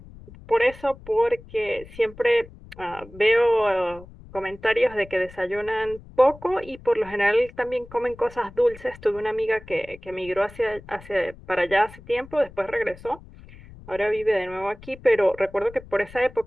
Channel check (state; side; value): noise; left; rumble, 19 dB below the sound